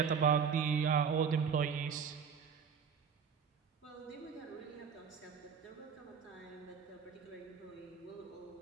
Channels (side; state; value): left; quieter; 6.7 dB